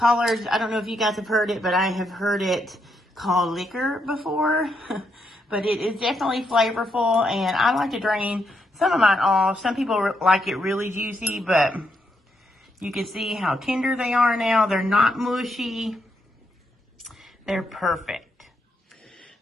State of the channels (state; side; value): normal; both; correlation 0.79